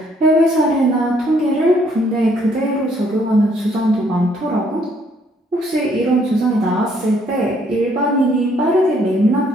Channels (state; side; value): normal; both; correlation 0.67